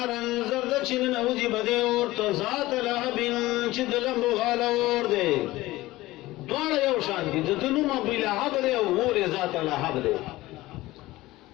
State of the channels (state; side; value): quieter; right; 18.1 dB